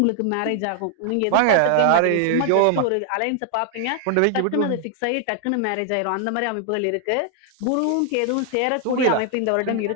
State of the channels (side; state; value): both; different; correlation 0.00